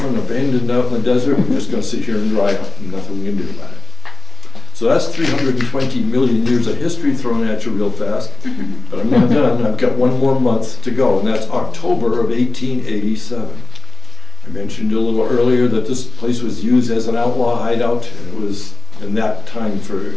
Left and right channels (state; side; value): quieter; right; 3.6 dB